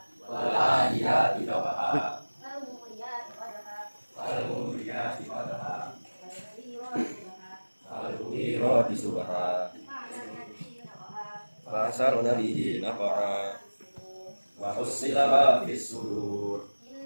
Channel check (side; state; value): both; inverted; correlation -1.00